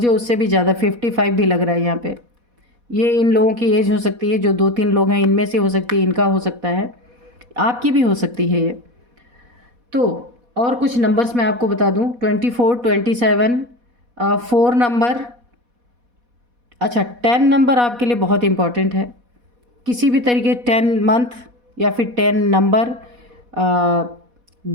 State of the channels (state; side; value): late; left; 4.1 ms